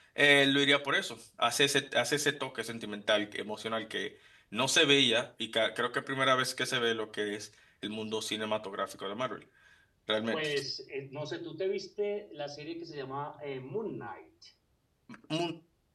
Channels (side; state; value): both; identical; correlation 1.00